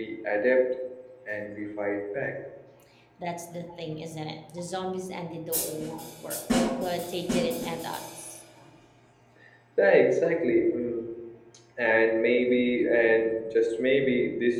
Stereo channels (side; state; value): both; identical; correlation 1.00